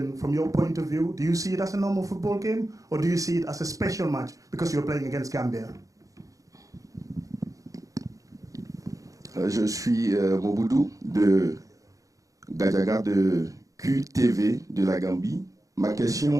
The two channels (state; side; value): late; left; 0.16 ms